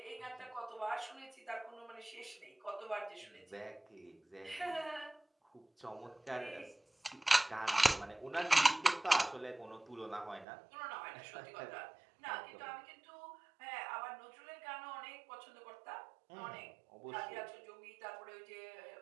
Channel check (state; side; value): drops out; left; at 10.5 s